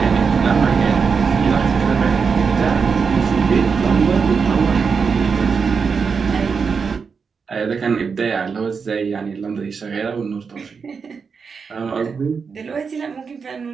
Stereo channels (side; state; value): left; quieter; 5.6 dB